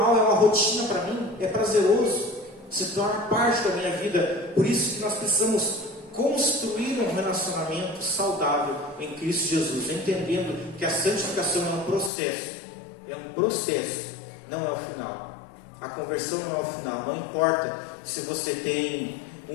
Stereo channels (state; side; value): drops out; right; at 12.1 s